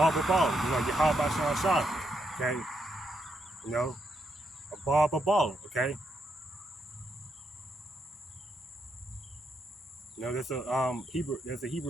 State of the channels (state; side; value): normal; both; correlation 0.80